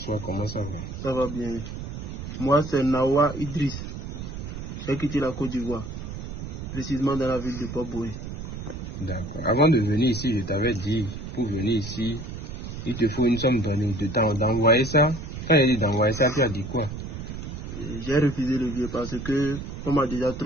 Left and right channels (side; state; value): right; noise; rumble, 8 dB below the sound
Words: comment ça va? Ça va bien. Moi, c'est Nawa Idriss. J'ai quitté la Côte d'Ivoire, précisément dans la ville de Port-Boué. D'accord. Avant de venir ici, je t'avais dit, pour venir ici, il te faut une somme donnée de temps d'envoyer ça. Quand il dit d'envoyer ça, tu as dit quoi? J'ai refusé le vieux parce que on m'a déjà